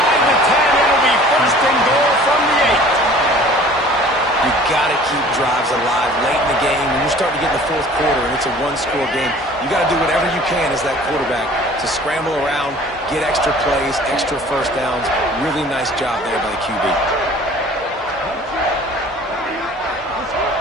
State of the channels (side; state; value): both; normal; correlation 0.48